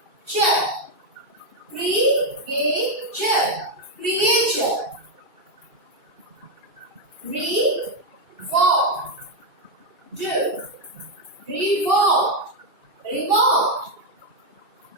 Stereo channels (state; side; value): late; left; 2.6 ms